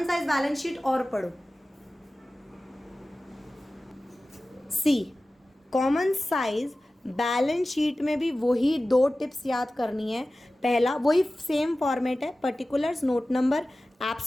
साइज बैलेंस शीट और पढ़ो। सी कॉमन साइज बैलेंस शीट में भी वही 2 टिप्स याद करनी है। पहला वही सेम फॉर्मेट है, particulars, note number,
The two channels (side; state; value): both; normal; correlation 0.96